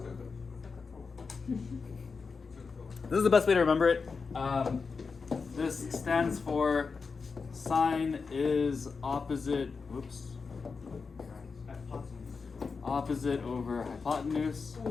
This is the best way to remember it. This stands for sine is opposite, whoops, opposite over hypotenuse.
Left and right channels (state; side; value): quieter; right; 4.9 dB